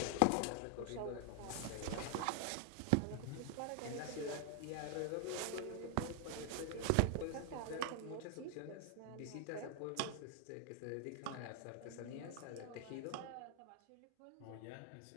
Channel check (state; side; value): different; both; correlation 0.00